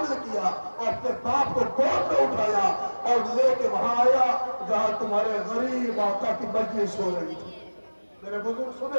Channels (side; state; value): both; inverted; correlation -1.00